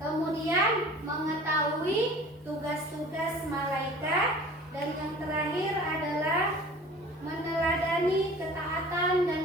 mengetahui tugas-tugas malaikat, dan yang terakhir adalah meneladani ketaatan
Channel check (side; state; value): both; normal; correlation 0.44